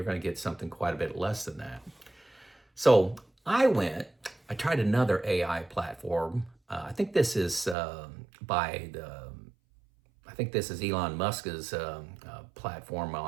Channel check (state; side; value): drops out; left; at 7.8 s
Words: going to get something quite a bit less than that. So I tried another AI platform. I think this is Elon Musk's platform